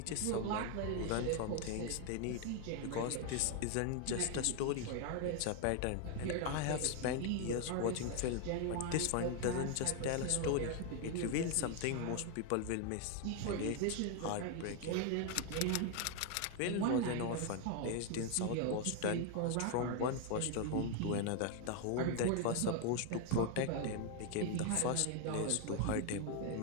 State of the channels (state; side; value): different; both; correlation 0.00